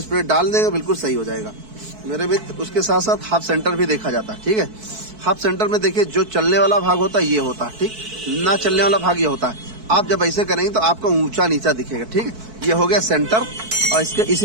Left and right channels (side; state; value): left; late; 4.6 ms